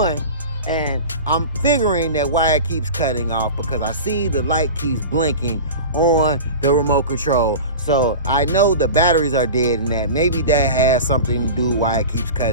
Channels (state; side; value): inverted; both; correlation -0.32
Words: And I'm figuring that why it keeps cutting off because I see the light keeps blinking on the remote control. So I know the batteries are dead and that maybe that has something to do why it keeps